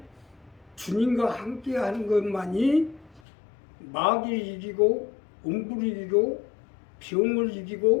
주님과 함께 하는 것만이 마귀를 이기고 음부를 이기고 병을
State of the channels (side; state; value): right; drops out; at 3.2 s